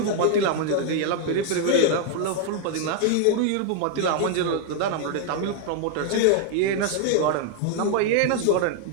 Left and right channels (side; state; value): both; different; correlation 0.00